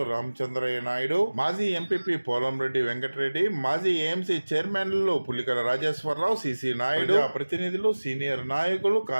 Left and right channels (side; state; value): both; inverted; correlation -1.00